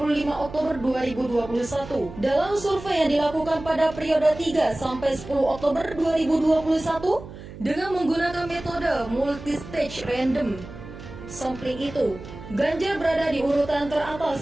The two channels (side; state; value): right; noise; hum, 14 dB below the sound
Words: Oktober 2021. Dalam survei yang dilakukan pada periode 3 sampai 10 Oktober 2021 dengan menggunakan metode multistage random sampling itu, Ganjar berada di urutan